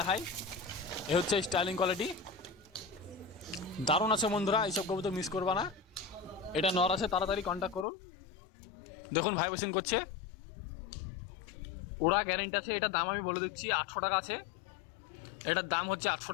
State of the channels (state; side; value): drops out; right; at 7.9 s